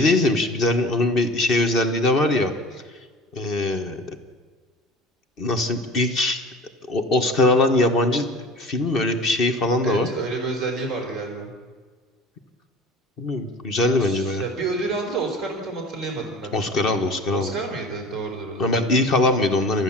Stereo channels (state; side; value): normal; both; correlation 0.40